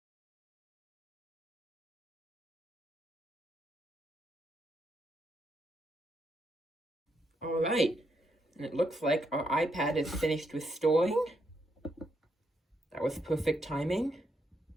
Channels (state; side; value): normal; both; correlation 0.78